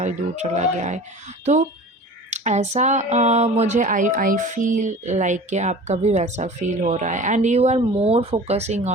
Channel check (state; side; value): normal; both; correlation 0.39